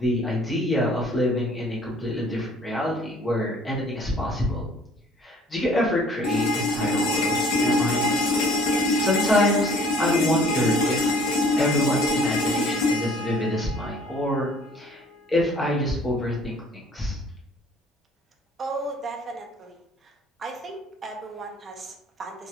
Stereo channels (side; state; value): both; normal; correlation 0.55